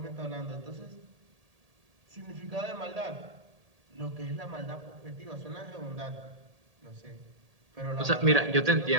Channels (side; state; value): left; late; 1.8 ms